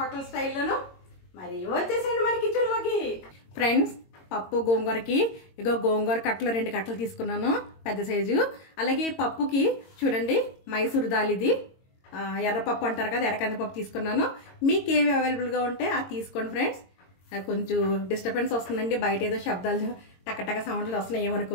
స్టైల్లోను. మరి వచ్చేసేయండి మన కిచెన్లోకి. ఫ్రెండ్స్, పప్పు గోంగూరకి ఇగో గోంగూర కట్టలు 2 కట్టలు తీసుకున్నాను, పెద్ద సైజు. అలాగే పప్పుకి చూడండి మైసూర్ దాల్, ఇది ఎర్రపప్పు అంటారు కదా, ఎర్రకందిపప్పు తీసుకున్నాను. మీకు ఏవి అవైలబుల్గా ఉంటే అది తీసుకోండి ఫ్రెండ్స్. కొంచెం డిస్టర్బెన్స్ వస్తుందండి, బయట ఏదో శబ్దాలు టక్కటక్క సౌండ్లు వస్తున్నాయి,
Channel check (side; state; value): right; late; 22 ms